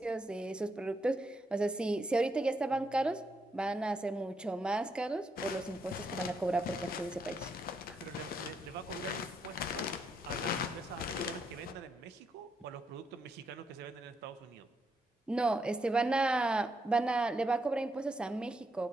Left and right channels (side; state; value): both; normal; correlation 0.78